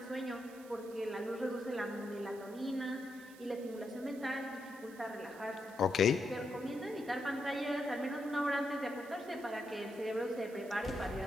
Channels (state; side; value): noise; right; hiss, 21 dB below the sound